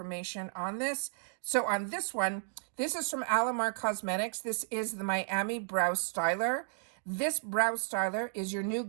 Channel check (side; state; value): left; silent; digital silence